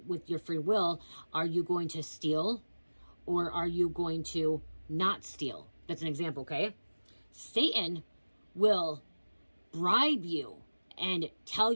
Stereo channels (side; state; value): both; inverted; correlation -1.00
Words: with your free will, are you going to steal or are you going to not steal? That's an example, okay? Satan will bribe you and tell